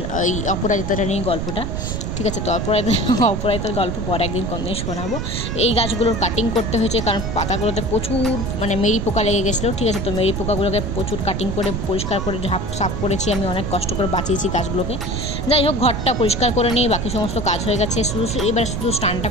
এই অপরাজিতাটা নিয়ে গল্পটা, ঠিক আছে? তো অপরাজিতার গল্প পরে একদিন কোনদিন শোনাবো। এই গাছগুলোর কাটিং করতে হয়েছে, কারণ পাতাগুলোতে প্রচুর মেরি পোকা লেগে গেছিলো, ঠিক আছে? তো মেরি পোকাগুলোকে প্রচুর কাটিং করে পরিষ্কার করে সাফ করেছি আমি, অনেক কষ্ট করে বাঁচিয়েছি গাছগুলোকে। যাই হোক, ঘরটা পরিষ্কার করে নিয়ে বাকি সমস্ত কাজ হয়ে গেছে। এবার শুধু স্নানটা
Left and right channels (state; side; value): noise; right; rumble, 3 dB below the sound